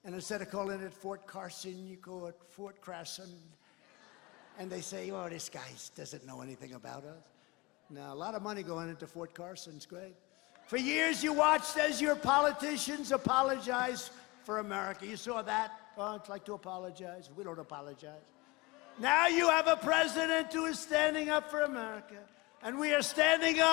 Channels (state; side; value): quieter; right; 24.1 dB